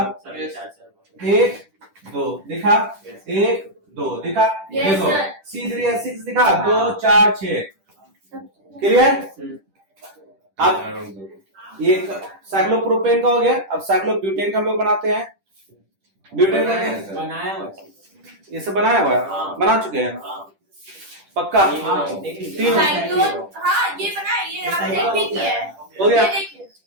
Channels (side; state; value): left; late; 10 ms